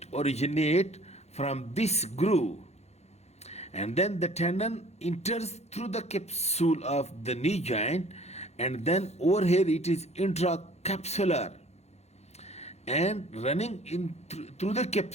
originate from this groove, and then the tendon enters through the capsule of the knee joint, and then over here it is intracapsular and running in through the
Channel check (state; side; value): late; right; 0.31 ms